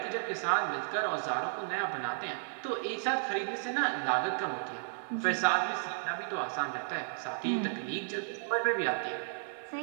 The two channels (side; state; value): left; silent; 55 dB below the other